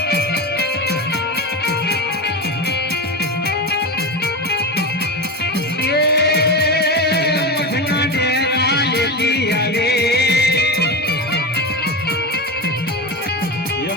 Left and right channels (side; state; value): both; normal; correlation 0.20